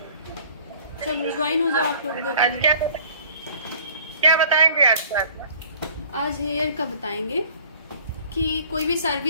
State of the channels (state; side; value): inverted; both; correlation -0.51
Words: चलो ज्वाइन हो जाओ आप लोग। आज क्या बताएंगे आज क्लास में? आज हेयर का बताएंगे कि कोई भी